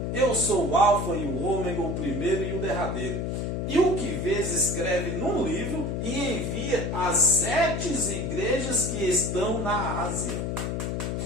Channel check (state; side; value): noise; left; hum, 1 dB below the sound